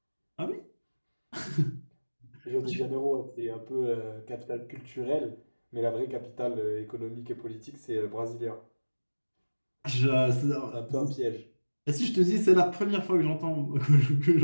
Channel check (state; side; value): inverted; both; correlation -1.00